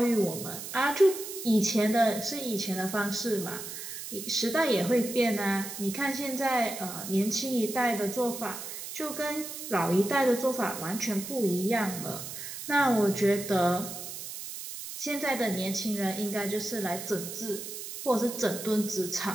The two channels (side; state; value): right; noise; hiss, 9 dB below the sound